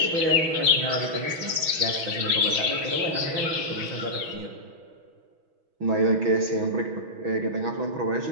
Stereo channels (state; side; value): late; left; 6.2 ms